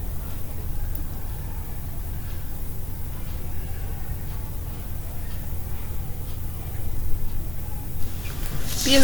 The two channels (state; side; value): noise; right; rumble, 11 dB below the sound